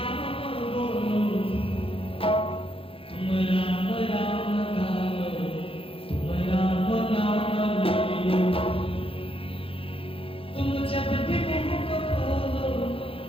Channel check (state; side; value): late; right; 0.27 ms